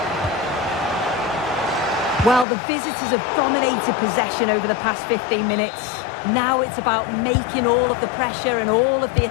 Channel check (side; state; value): right; drops out; at 2.5 s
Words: Well, the visitors have dominated possession over the past 15 minutes. Now it's about making all of the pressure and all of the